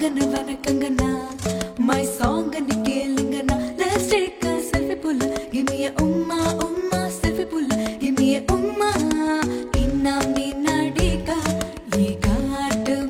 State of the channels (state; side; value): identical; both; correlation 1.00